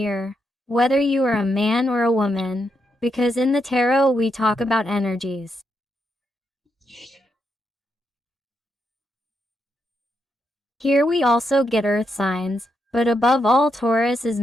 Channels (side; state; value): both; normal; correlation 0.81